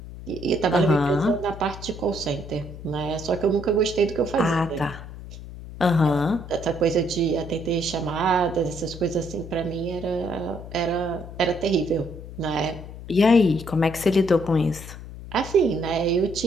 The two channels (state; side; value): noise; left; hum, 13 dB below the sound